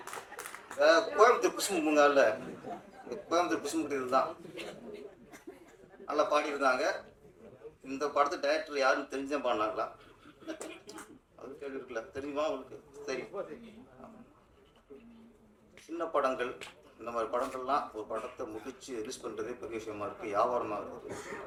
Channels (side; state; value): both; identical; correlation 1.00